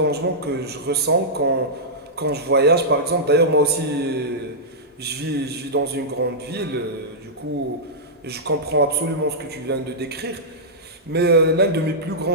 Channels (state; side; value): normal; both; correlation -0.12